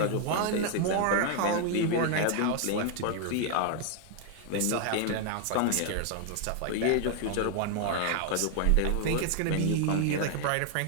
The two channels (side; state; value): both; different; correlation 0.00